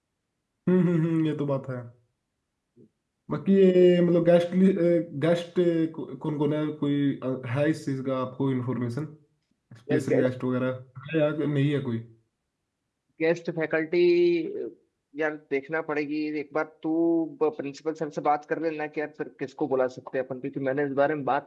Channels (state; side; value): identical; both; correlation 1.00